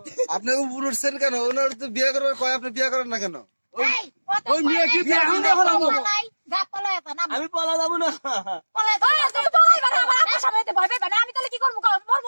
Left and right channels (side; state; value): both; inverted; correlation -1.00